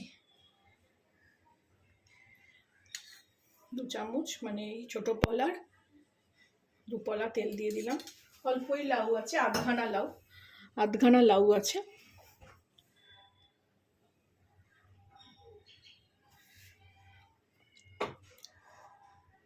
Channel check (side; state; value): both; identical; correlation 1.00